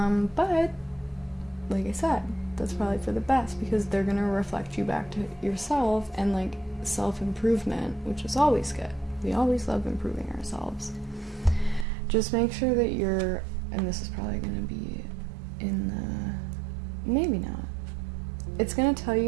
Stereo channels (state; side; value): drops out; left; at 11.9 s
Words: But like I said, that's probably for the best, because they're gonna reflect you back to yourself and like self-improvement, which is always good. We always love improving ourselves. Just make sure that you're, and this is probably gonna be in the, maybe not. It's gonna tell